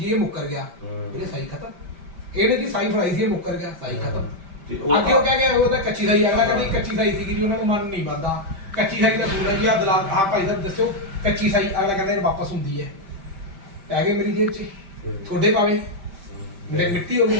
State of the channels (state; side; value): late; left; 5.1 ms